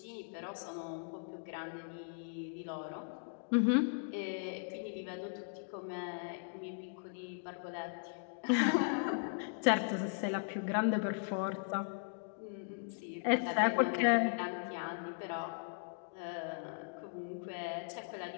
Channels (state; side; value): silent; right; digital silence